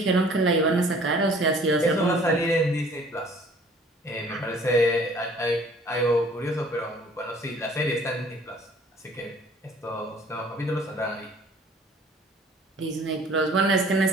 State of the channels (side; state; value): both; normal; correlation 0.53